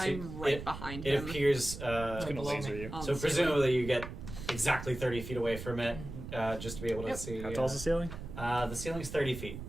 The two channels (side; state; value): right; noise; rumble, 9 dB below the sound